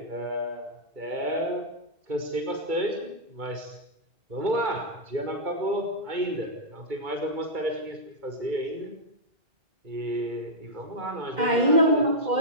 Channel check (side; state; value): left; late; 2.3 ms